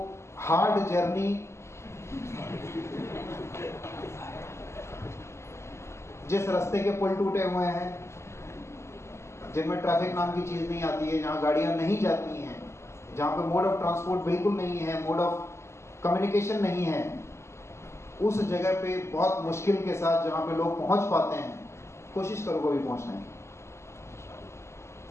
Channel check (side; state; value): right; late; 0.13 ms